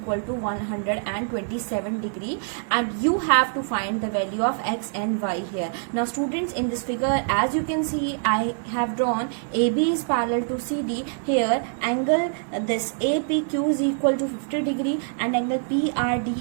to 127 degree, and you have to find the value of X and Y here. Now students, in this figure as you can see, I have drawn AB is parallel to CD. Here angle this APQ is equal to 50 degree and angle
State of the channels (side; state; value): left; silent; 57 dB below the other